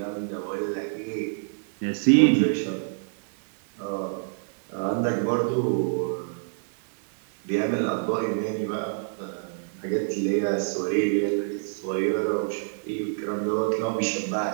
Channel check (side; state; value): left; silent; digital silence